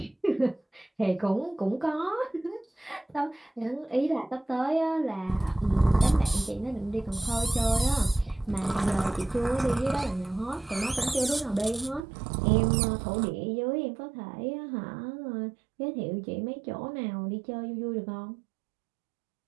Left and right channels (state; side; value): drops out; left; at 12.1 s